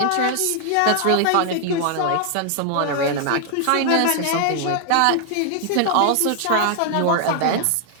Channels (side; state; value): both; different; correlation 0.00